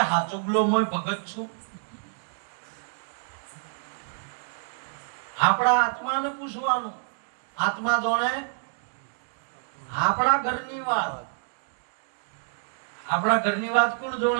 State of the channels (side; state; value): left; silent; digital silence